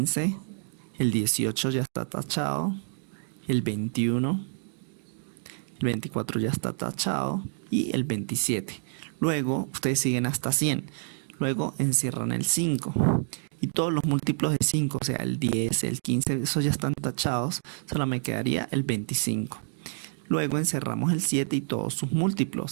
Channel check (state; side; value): silent; left; digital silence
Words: el 18 ya está tachado, el 21, el 24 ya está tachado y el 27. Luego ustedes siguen hasta 100. Luego encierran el 5 y todos los múltiplos de 5, o sea, el 10, el 15, esos ya están tachados, solo me quedaría el 25. Luego encerramos el 7 y todos sus